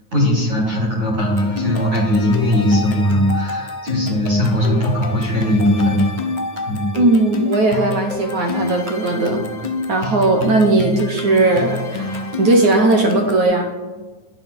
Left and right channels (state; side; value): late; left; 9.4 ms